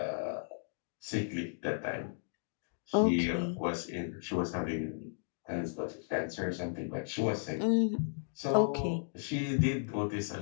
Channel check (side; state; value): right; silent; digital silence